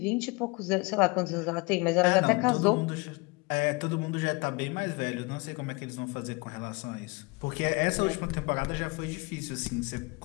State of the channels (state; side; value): quieter; right; 27.0 dB